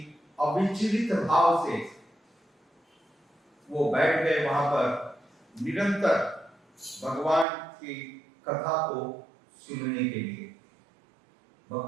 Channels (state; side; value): drops out; left; at 7.5 s